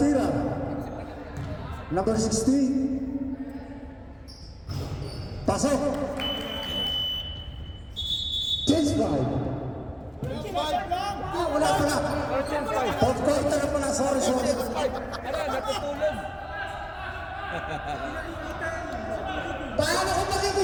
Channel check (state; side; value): identical; both; correlation 1.00